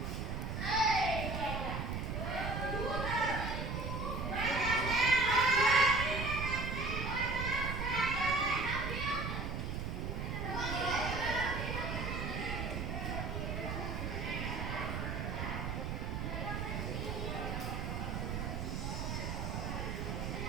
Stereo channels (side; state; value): right; noise; rumble, 2 dB below the sound